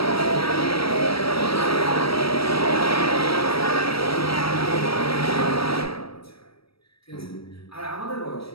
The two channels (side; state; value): right; late; 0.76 ms